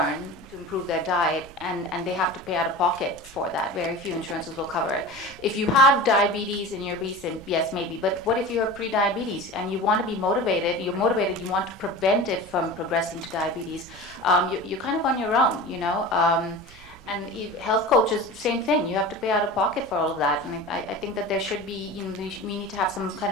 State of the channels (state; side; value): noise; right; rumble, 22 dB below the sound